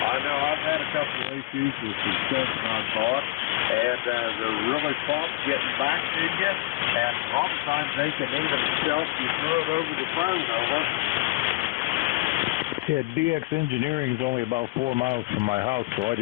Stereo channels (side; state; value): right; quieter; 20.4 dB